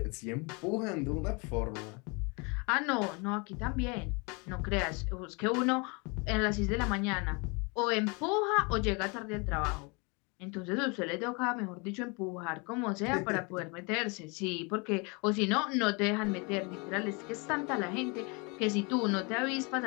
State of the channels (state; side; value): quieter; right; 30.5 dB